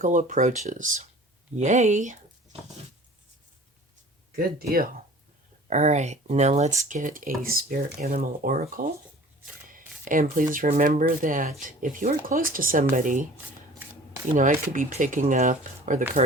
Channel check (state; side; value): normal; both; correlation 0.46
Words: approaches. Yay! Good deal. All right, now let's get a spirit animal oracle. And please remember that if you are close to somebody, I could be picking up, or the